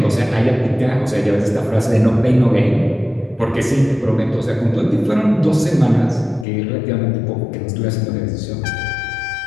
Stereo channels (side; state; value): right; drops out; at 6.5 s